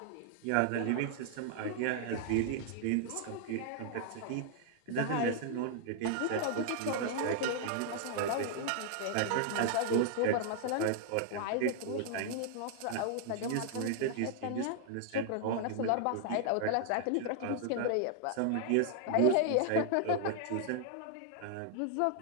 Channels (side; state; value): both; different; correlation 0.00